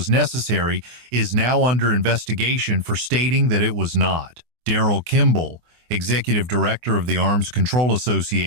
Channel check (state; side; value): late; left; 24 ms